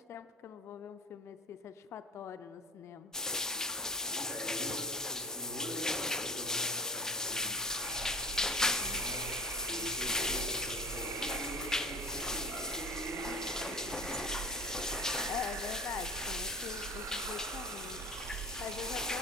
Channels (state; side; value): normal; both; correlation 0.34